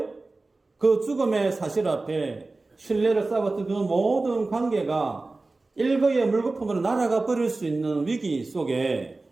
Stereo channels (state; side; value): quieter; left; 3.4 dB